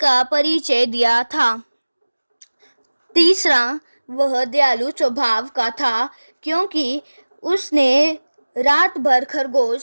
परिचय दिया था। तीसरा, वह दयालु स्वभाव का था, क्योंकि उसने रात भर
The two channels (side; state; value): both; inverted; correlation -1.00